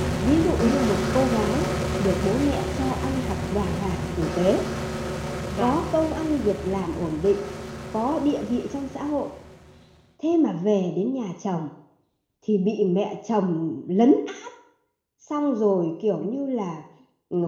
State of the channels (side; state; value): both; identical; correlation 1.00